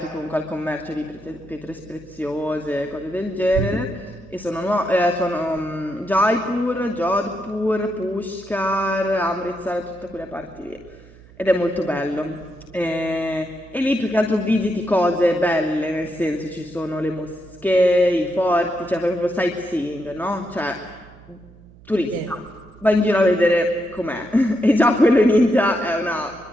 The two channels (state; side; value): noise; right; hum, 23 dB below the sound